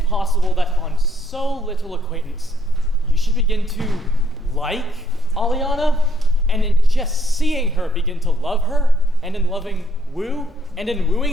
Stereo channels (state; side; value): normal; both; correlation 0.70